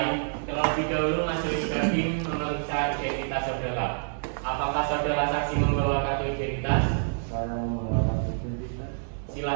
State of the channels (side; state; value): left; silent; digital silence